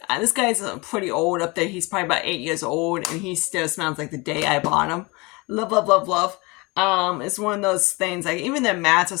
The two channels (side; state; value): right; quieter; 25.9 dB